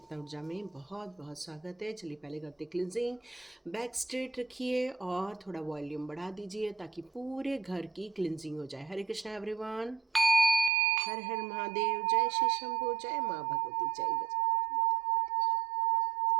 ऊर्जा में बहुत बहुत स्वागत है। चलिए पहले करते क्लिनजिंग। बैक स्ट्रेट रखिए और थोड़ा वॉल्यूम बढ़ा दीजिए ताकि पूरे घर की क्लिनजिंग हो जाए। हरे कृष्णा एवरीवन। हर हर महादेव। जय श्री शंभू। जय माँ भगवती। जय गज।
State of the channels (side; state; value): left; drops out; at 10.7 s